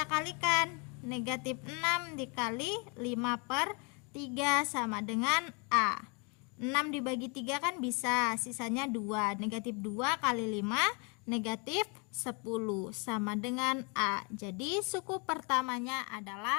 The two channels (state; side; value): quieter; right; 33.6 dB